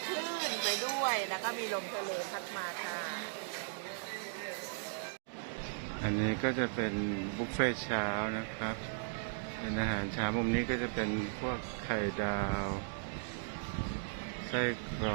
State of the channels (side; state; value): left; silent; digital silence